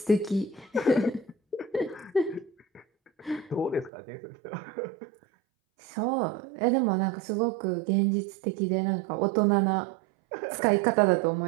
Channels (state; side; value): drops out; left; at 3.9 s